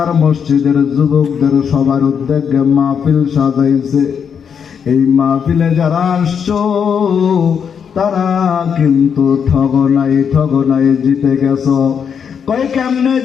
মসজিদের যুবকদের সবার উদ্যোগে মাহফিল সাজাইছে। এই মাহফিলে যারা আসছো তারা কিন্তু ঠগনাই জিতে গেছো। কই কেমনে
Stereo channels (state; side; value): quieter; right; 7.2 dB